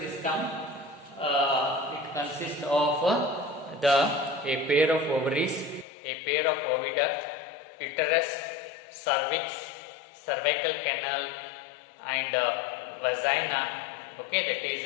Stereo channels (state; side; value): drops out; right; at 5.9 s